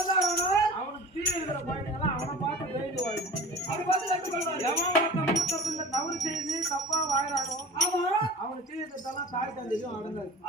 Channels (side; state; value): both; normal; correlation 0.38